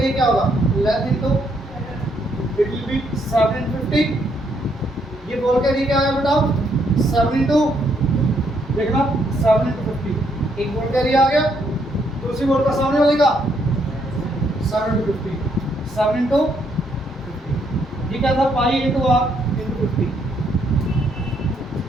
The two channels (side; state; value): both; normal; correlation 0.73